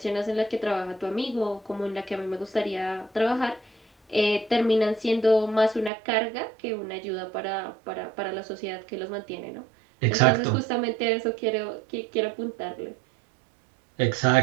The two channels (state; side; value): drops out; left; at 5.9 s